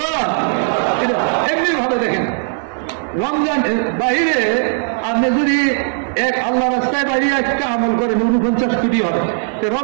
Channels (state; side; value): silent; left; 60 dB below the other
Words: এমনি ভাবে দেখেন, রমজান বাইরে আপনি যদি এক আল্লাহ রাস্তায় বাইরে একটা আমল করেন 49 কোটি হবে,